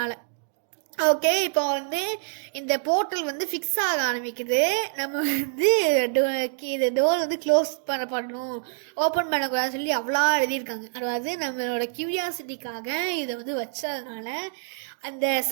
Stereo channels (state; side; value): silent; left; digital silence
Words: ஓகே. இப்போ வந்து இந்த போர்ட்டல் வந்து ஃபிக்ஸ் ஆக ஆரம்பிக்குது. நம்ம வந்து இது டோர் வந்து க்ளோஸ் பண்ணணும், ஓப்பன் பண்ணக்கூடாதுன்னு சொல்லி அவ்வளோ எழுதியிருக்காங்க. அதாவது நம்மளோட க்யூரியாசிட்டிக்காக இதை வந்து வச்சதுனால